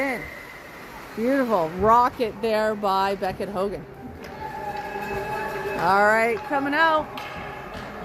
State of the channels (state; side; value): identical; both; correlation 1.00